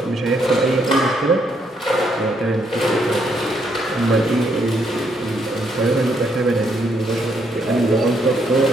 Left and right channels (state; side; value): normal; both; correlation 0.73